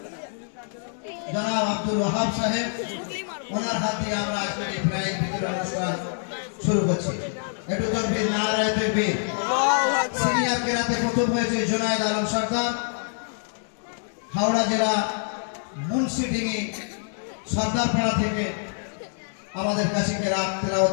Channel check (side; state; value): right; silent; digital silence